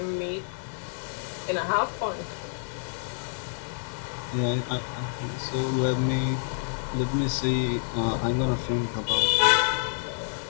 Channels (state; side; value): silent; right; digital silence